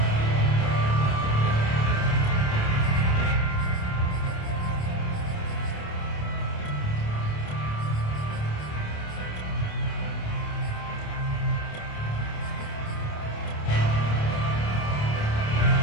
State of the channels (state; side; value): late; right; 28 ms